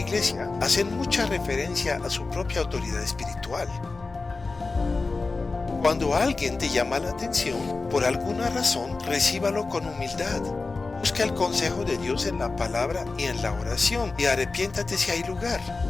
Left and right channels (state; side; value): quieter; right; 3.8 dB